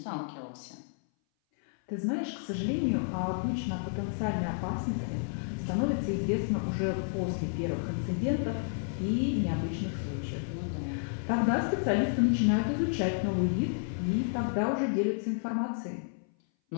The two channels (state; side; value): silent; right; 57 dB below the other